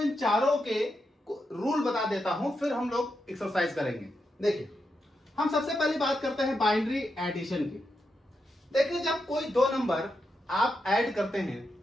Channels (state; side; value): normal; both; correlation 0.85